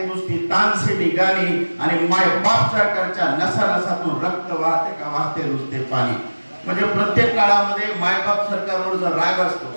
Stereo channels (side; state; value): both; inverted; correlation -1.00